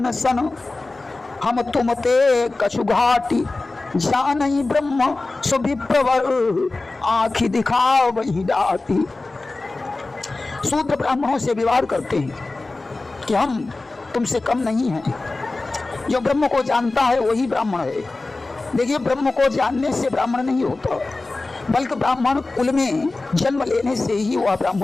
सन, हम तुम ते कछु घाटी, जान ही ब्रह्म सुभिप्रवर, आँखि दिखाओ वही डाटी। शूद्र ब्राह्मणों से विवाद करते हैं कि हम तुमसे कम नहीं हैं। जो ब्रह्म को जानता है वही ब्राह्मण है। देखिए, ब्रह्म को जानने से ब्राह्मण नहीं होता, बल्कि ब्राह्मण कुल में जन्म लेने से ही वह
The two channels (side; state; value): right; quieter; 3.3 dB